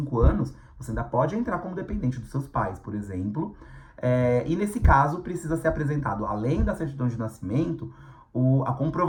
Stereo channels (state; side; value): identical; both; correlation 1.00